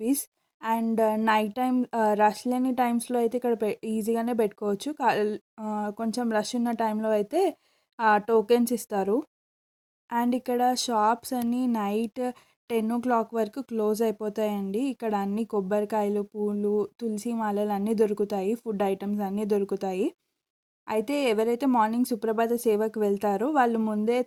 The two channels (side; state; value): both; identical; correlation 1.00